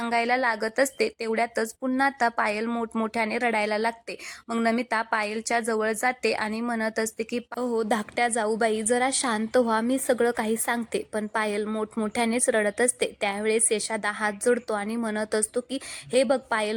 लागत असते, तेवढ्यातच पुन्हा आता पायल मोठमोठ्याने रडायला लागते। मग नमिता पायलच्या जवळ जाते आणि म्हणत असते की हो धाकट्या जाऊबाई जरा शांत व्हा, मी सगळं काही सांगते, पण पायल मोठमोठ्यानेच रडत असते। त्यावेळेस यशादा हात जोडतो आणि म्हणत असतो की हे बघ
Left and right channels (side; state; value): both; identical; correlation 1.00